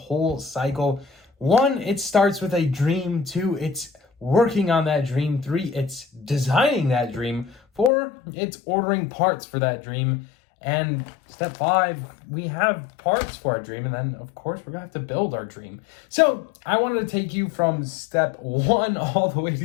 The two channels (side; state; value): right; drops out; at 7.9 s